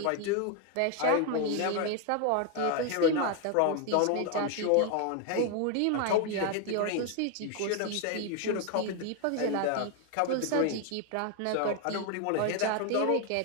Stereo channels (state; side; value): different; both; correlation 0.01